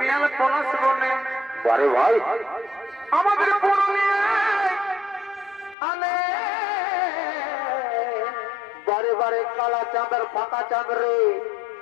পলাশ বনে বারে ভাই আমাদের পুরুলিয়ায় আলে বারে বারে কালা চাঁদের ফাঁকা চাঁদ রে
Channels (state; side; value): drops out; right; at 5.8 s